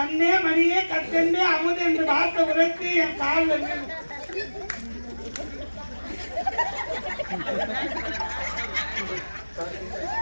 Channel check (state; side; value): inverted; both; correlation -1.00